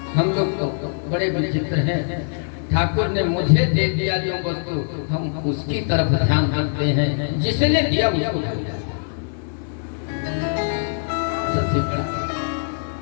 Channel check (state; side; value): silent; right; digital silence